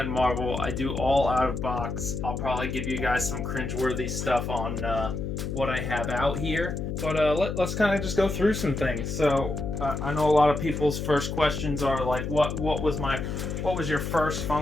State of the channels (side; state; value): left; noise; hum, 4 dB below the sound